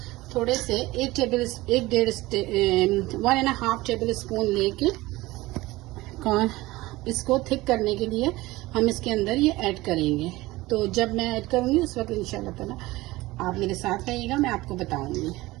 थोड़े से 1.5 टेबल स्पून लेके इसको थिक करने के लिए हम इसके अंदर ये ऐड करेंगे। तो जब मैं ऐड करूँगी उस वक्त इंशाल्लाह ताला आप मेरे साथ रहिएगा, मैं आपको बताऊंगी।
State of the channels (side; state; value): left; quieter; 19.4 dB